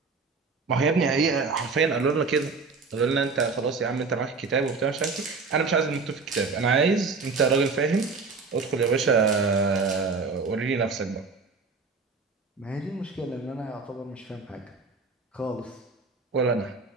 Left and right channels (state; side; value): quieter; left; 4.5 dB